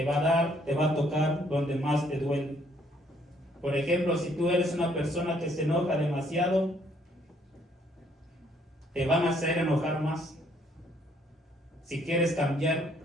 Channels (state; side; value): normal; both; correlation 0.66